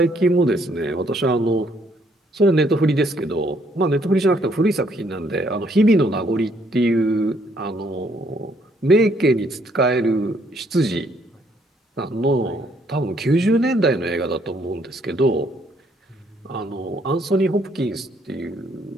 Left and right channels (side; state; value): both; normal; correlation 0.68